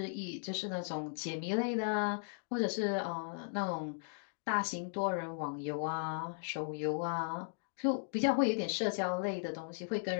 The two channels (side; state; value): right; silent; digital silence